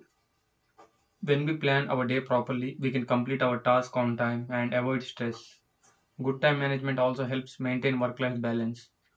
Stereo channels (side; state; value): both; identical; correlation 1.00